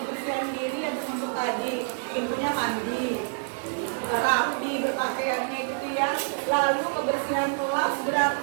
diri yang termasuk tadi, pintunya mandi, rapi berpakaiannya gitu ya. Lalu kebersihan kelas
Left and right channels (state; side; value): silent; left; digital silence